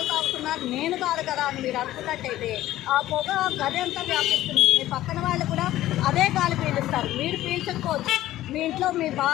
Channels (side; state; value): right; quieter; 14.6 dB